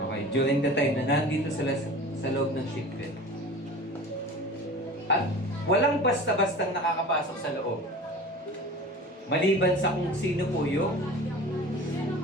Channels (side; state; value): both; normal; correlation 0.38